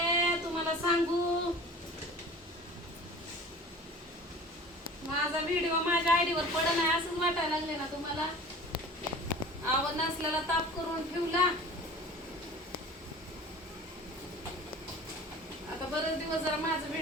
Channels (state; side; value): normal; both; correlation 0.41